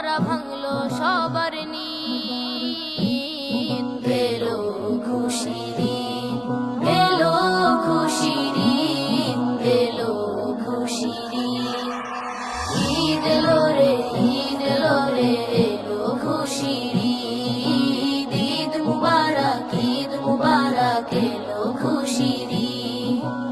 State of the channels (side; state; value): right; noise; hum, 29 dB below the sound